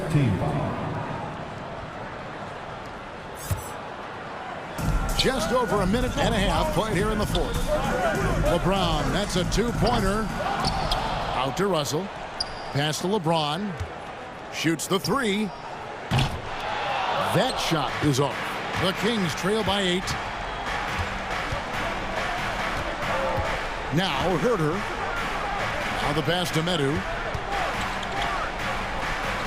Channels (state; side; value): identical; both; correlation 1.00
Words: team foul. Just over a minute and a half played here in the 4th. LeBron, that's a 2-pointer. Out to Russell. Pass to LeBron. Shoots the 3. That shot is off. The Kings trail by 8. Now Herter. Now the pass to Metu.